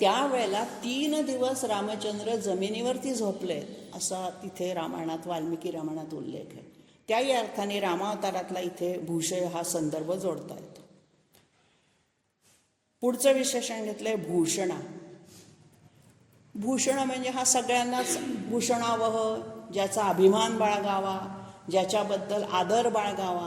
त्यावेळेला 3 दिवस रामचंद्र जमिनीवरती झोपले असा तिथे रामायणात, वाल्मिकी रामायणात उल्लेख आहे. त्याही अर्थाने रामावतारातला इथे भूषय हा संदर्भ जोडता येतो. पुढचं विशेषण घेतलंय भूषणा. भूषण म्हणजे हा सगळ्यांनाच भूषणावह, ज्याचा अभिमान बाळगावा, ज्याच्याबद्दल आदर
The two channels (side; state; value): both; identical; correlation 1.00